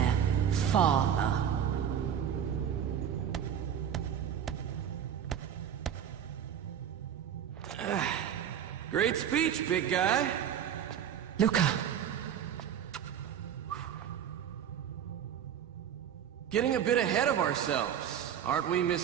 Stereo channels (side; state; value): left; quieter; 9.1 dB